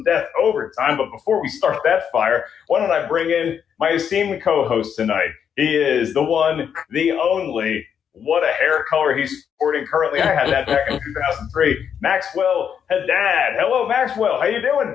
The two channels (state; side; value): quieter; right; 7.9 dB